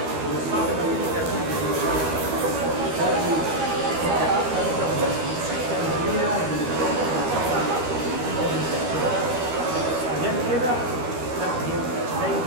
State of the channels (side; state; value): left; late; 12 ms